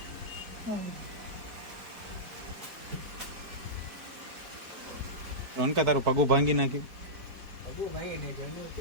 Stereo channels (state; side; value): late; left; 4.6 ms